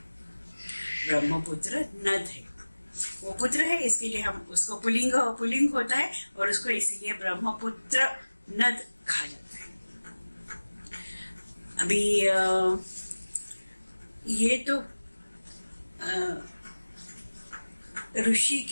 ब्रह्मपुत्र नद है, वो पुत्र है, इसके लिए हम उसको पुल्लिंग होता है और उसको इसीलिए ब्रह्मपुत्र नद कहा जाता है। अभी ये तो ऋषि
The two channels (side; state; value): both; inverted; correlation -1.00